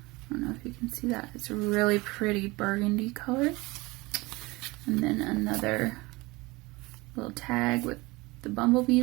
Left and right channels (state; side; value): quieter; left; 22.8 dB